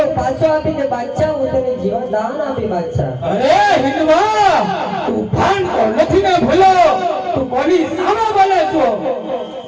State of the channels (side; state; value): both; identical; correlation 1.00